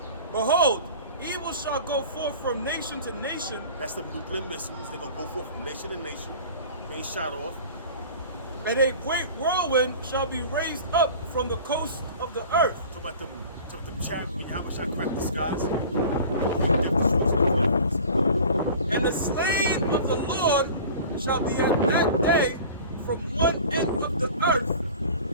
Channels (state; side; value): inverted; both; correlation -0.40